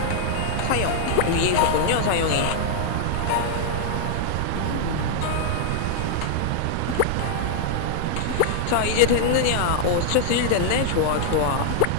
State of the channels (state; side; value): different; both; correlation -0.01